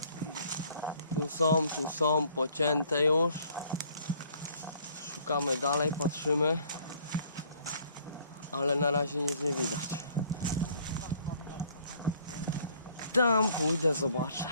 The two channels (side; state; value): both; inverted; correlation -0.59